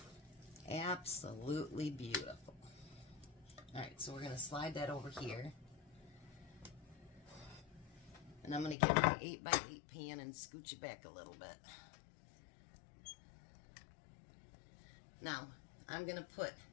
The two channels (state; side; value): drops out; right; at 8.8 s